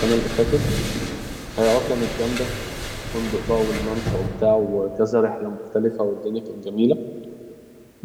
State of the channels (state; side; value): identical; both; correlation 1.00